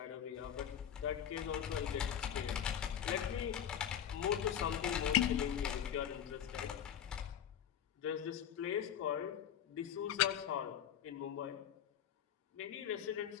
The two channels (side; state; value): right; quieter; 9.4 dB